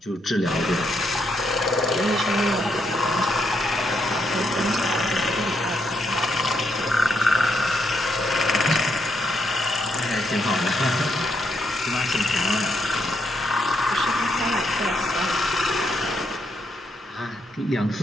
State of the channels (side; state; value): both; normal; correlation 0.77